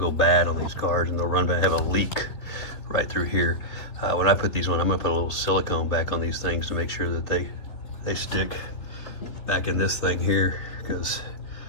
bad on these cars, and they'll run back, have a leak right through here. When I put these on, I'm gonna put a little silicone back on these things to make sure that they stick back in this thing here, because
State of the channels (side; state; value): right; late; 3.5 ms